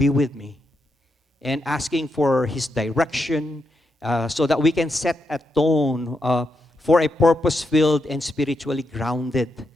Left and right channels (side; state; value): both; normal; correlation 0.83